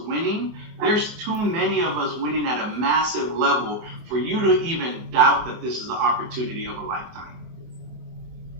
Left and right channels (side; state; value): left; late; 24 ms